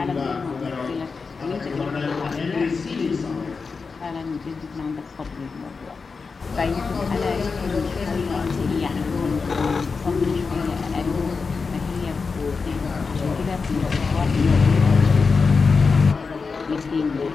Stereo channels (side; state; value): right; quieter; 4.8 dB